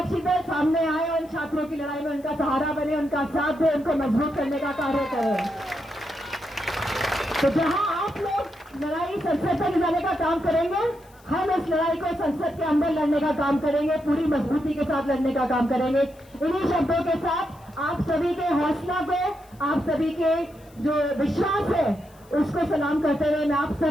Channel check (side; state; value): left; noise; hiss, 29 dB below the sound